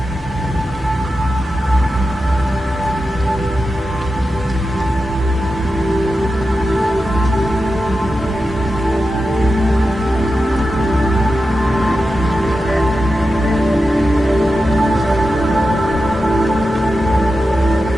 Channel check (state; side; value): normal; both; correlation 0.91